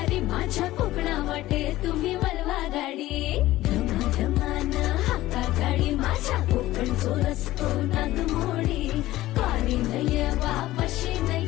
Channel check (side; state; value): right; quieter; 16.2 dB